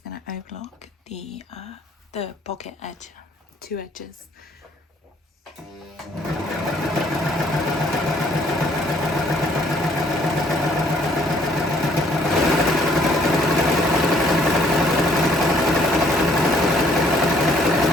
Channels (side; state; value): both; normal; correlation 0.64